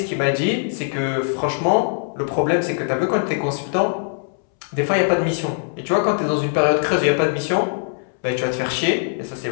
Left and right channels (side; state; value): right; silent; 65 dB below the other